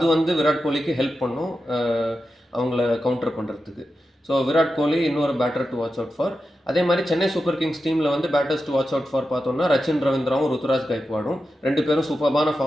வந்து விராட் கோலிக்கு ஹெல்ப் பண்ணும் அவங்கள கவுண்டர் பண்ணுறதுக்கு. ஸோ விராட் கோலி இன்னொரு batter to watch out for. அதே மாதிரி சென்னை சூப்பர் கிங்ஸ் டீமில் வந்து batters to watch out for பார்த்தோம்னா ரச்சின் ரவீந்திராவும் ருத்துராஜ் கைக்வாடும் 2 பேரும் சூப்பரான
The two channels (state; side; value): normal; both; correlation 0.90